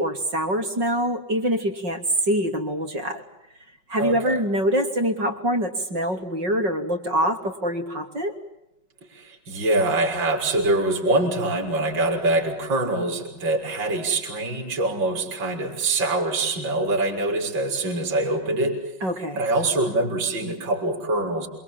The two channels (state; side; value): late; left; 5.4 ms